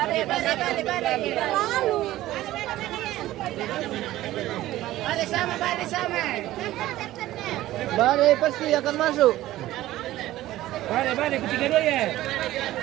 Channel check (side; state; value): left; quieter; 15.4 dB